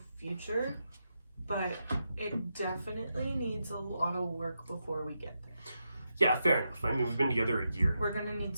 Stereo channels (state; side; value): inverted; both; correlation -0.86